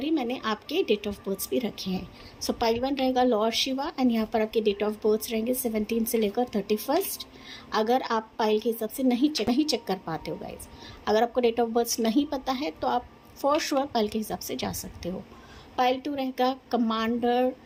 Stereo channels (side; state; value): both; identical; correlation 1.00